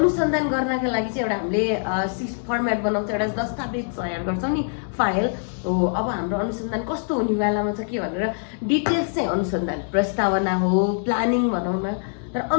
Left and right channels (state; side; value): silent; right; digital silence